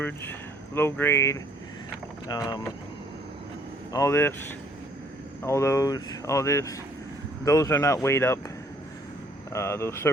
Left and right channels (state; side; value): normal; both; correlation 0.62